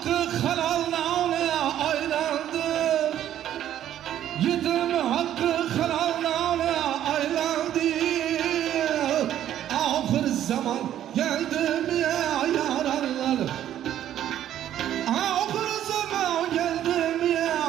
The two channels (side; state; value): left; quieter; 11.4 dB